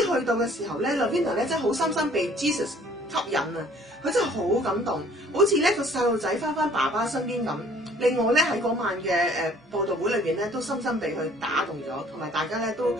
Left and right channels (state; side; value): normal; both; correlation 0.55